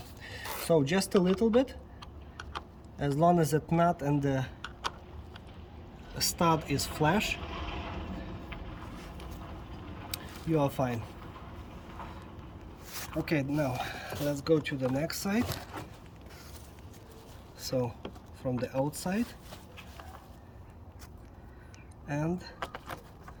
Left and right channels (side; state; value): both; identical; correlation 1.00